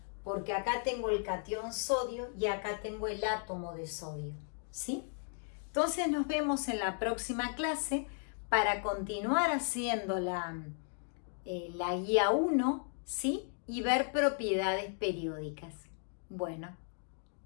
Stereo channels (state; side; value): silent; right; 54 dB below the other